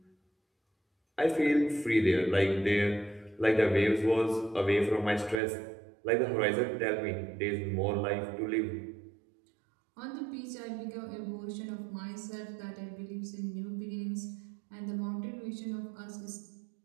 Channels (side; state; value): left; drops out; at 5.4 s